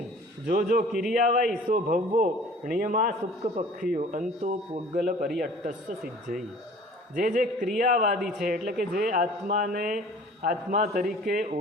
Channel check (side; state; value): both; normal; correlation 0.48